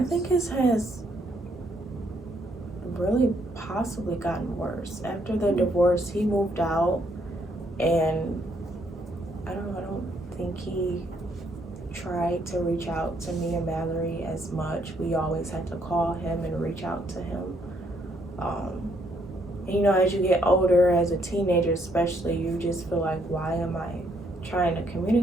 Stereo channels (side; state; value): both; normal; correlation 0.71